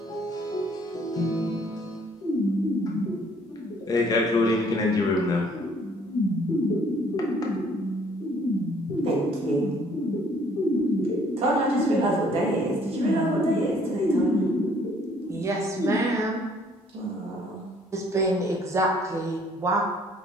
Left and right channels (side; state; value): both; normal; correlation 0.61